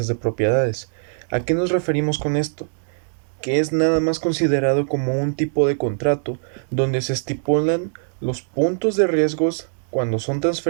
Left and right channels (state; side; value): silent; left; digital silence